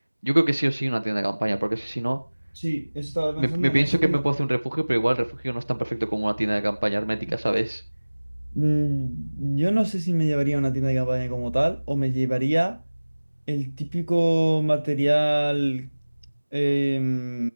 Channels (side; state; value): both; inverted; correlation -1.00